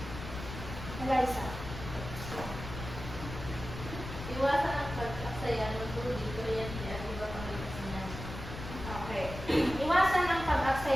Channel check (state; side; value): noise; left; rumble, 9 dB below the sound